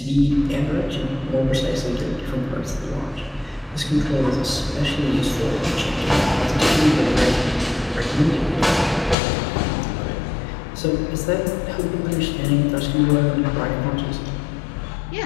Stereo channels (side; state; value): right; drops out; at 9.2 s